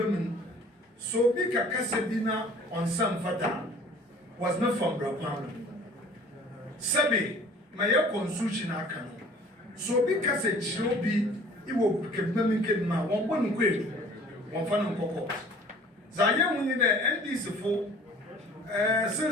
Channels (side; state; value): both; normal; correlation 0.50